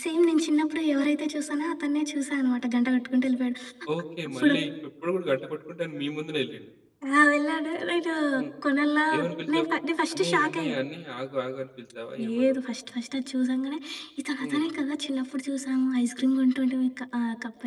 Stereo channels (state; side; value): identical; both; correlation 1.00